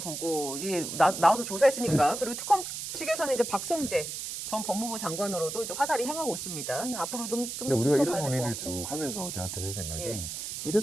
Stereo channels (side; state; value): right; noise; hiss, 6 dB below the sound